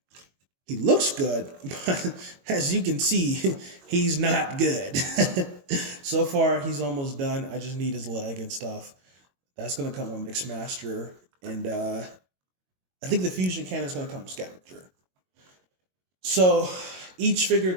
He looks good, but as you can see, he's not good. So far, he's almost done. I just need his leg and stuff. That's going to come on Mixmaster. And I think the Fusion Cannon is going to come with Scavenger. So each figure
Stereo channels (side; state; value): left; late; 22 ms